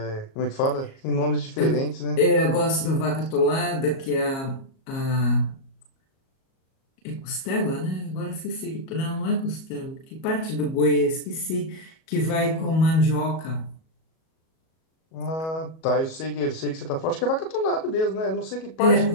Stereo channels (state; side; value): late; right; 37 ms